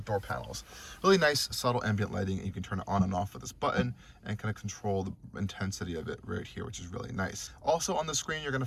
door panels. Really nice subtle ambient lighting, and you can turn it on and off with this button and kind of control the intensity of it right here, which is really nice. Also on the screen, you're going to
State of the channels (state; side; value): identical; both; correlation 1.00